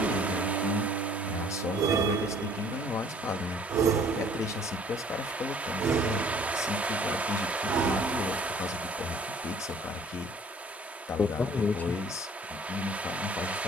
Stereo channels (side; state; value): both; normal; correlation 0.55